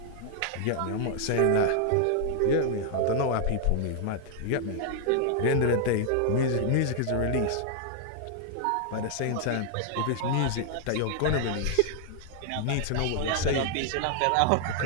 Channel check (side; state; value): both; different; correlation 0.00